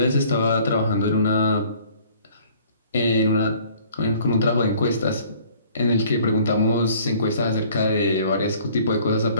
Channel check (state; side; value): inverted; both; correlation -0.55